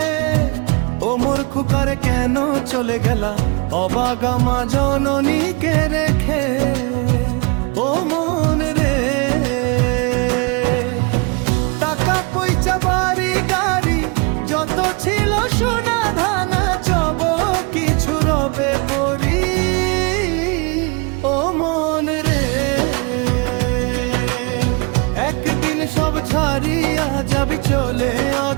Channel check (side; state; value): left; quieter; 30.1 dB